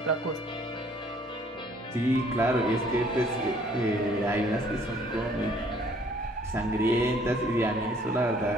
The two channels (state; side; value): normal; both; correlation 0.60